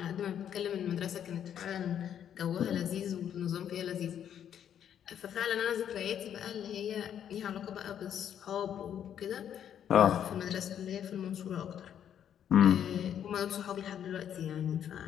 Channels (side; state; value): right; quieter; 9.4 dB